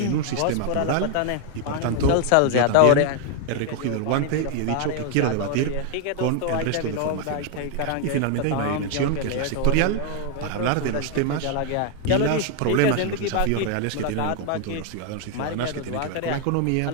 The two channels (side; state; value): both; different; correlation 0.01